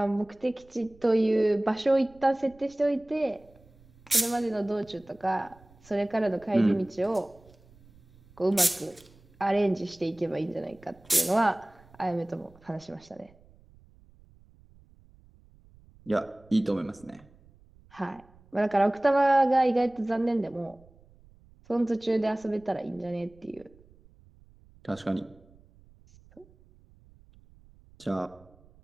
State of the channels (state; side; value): noise; right; rumble, 27 dB below the sound